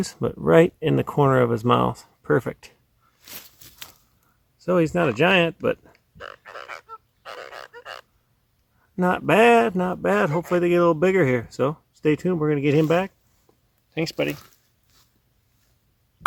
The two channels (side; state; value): both; identical; correlation 1.00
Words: but right in the corner of his mouth. Perfect. So he's not a giant, but not bad, not bad. Hopefully they get a little bigger here. So stay tuned. We're going to get him back. Thanks, buddy.